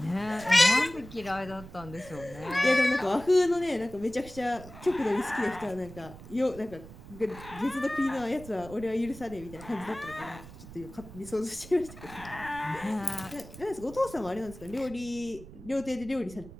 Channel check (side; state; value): right; noise; rumble, 16 dB below the sound